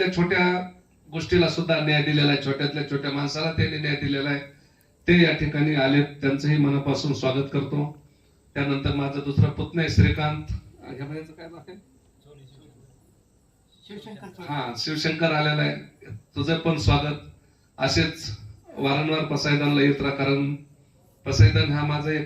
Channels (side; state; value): both; identical; correlation 1.00